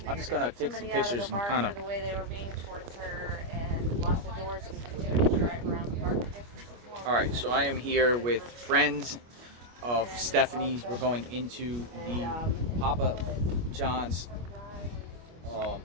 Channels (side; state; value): left; late; 25 ms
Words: I'm just gonna take some pictures and kind of. The way they were being towards her and locked the doors and continued to drive around the park. All right, so I am here with friends of Stephanie's. We're going into the Papa John's